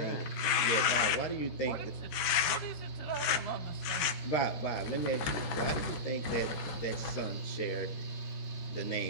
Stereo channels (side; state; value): right; late; 14 ms